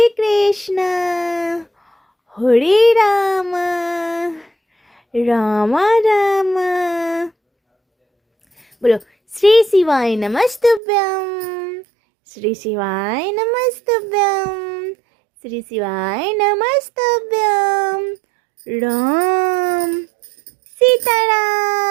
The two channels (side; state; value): left; drops out; at 10.8 s